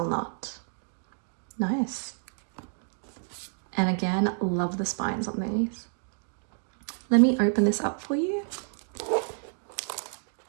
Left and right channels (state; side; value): silent; left; digital silence